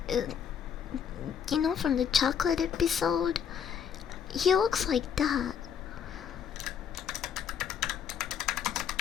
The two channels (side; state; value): right; quieter; 7.8 dB